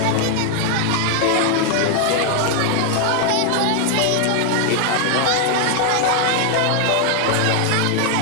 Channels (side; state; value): both; different; correlation 0.00